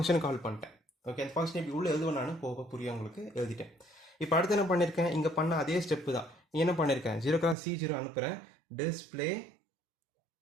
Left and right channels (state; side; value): drops out; left; at 7.6 s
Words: கால் பண்ணிட்டேன். ஓகே, அந்த ஃபங்க்ஷன் இப்படி உள்ளே எழுதுவேன் நான், போக புரியும் உங்களுக்கு, எழுதிட்டேன். இப்போ அடுத்து என்ன பண்ணியிருக்கேன், இங்கே பண்ண அதே ஸ்டெப்பு தான். என்ன பண்ணியிருக்கேன், 0x C0 அனுப்புகிறேன். டிஸ்பிளே